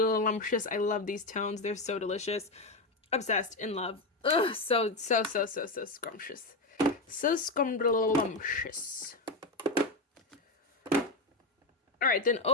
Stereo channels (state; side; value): quieter; right; 3.0 dB